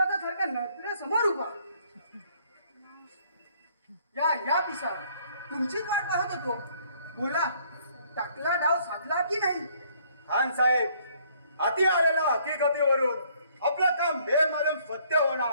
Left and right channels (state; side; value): inverted; both; correlation -0.63